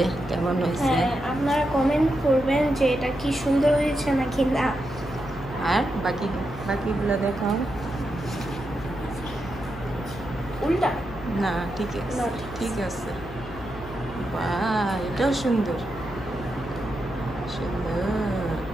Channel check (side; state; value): left; noise; hum, 13 dB below the sound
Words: কেমন হয়েছে। হ্যাঁ, আপনারা কমেন্ট করবেন যে এটা কি সুন্দর হয়েছে নাকি না। আর বাকিগুলো দেখাও। উল্টা না ঠিক আছে, না, ঠিক আছে। বাহ, এটাও সুন্দর সুন্দর।